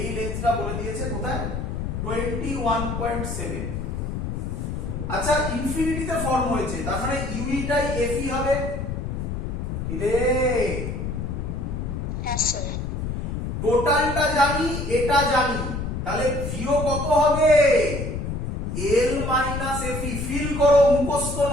লেন্থটা বলে দিয়েছে কোথায়? 21.7। আচ্ছা, ইনফিনিটিতে ফর্ম হয়েছে, তার মানে ইউইটাই এফই হবে। কিরে Yes, sir. টোটালটা জানি, এটা জানি, তাহলে ভিও কত হবে? L minus এফি। ফিল করো, মুখস্থ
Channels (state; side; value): noise; left; rumble, 4 dB below the sound